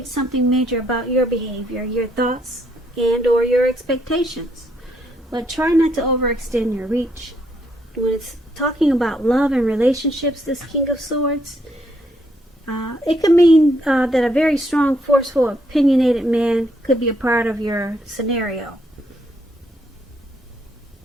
something major about your behavior, your thoughts, and or your expectations. But try not to overextend your reach. When it's talking about love and relationships, this King of Swords, it could mean that a very strong, forceful, opinionated man could be a part of your scenario.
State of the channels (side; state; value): both; normal; correlation 0.73